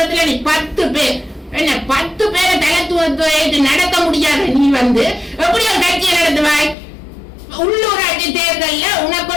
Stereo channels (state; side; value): drops out; right; at 6.8 s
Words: நீ 10 பேர் என்ன 10 பேரை தலைத்துவத்தை நடத்த முடியாது. நீ எப்படி ஒரு கட்சியை நடத்துவாய்? உள்ளூராட்சி தேர்தல்ல உனக்கு